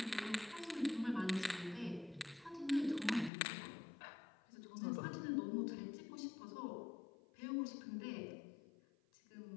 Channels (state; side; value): drops out; right; at 3.3 s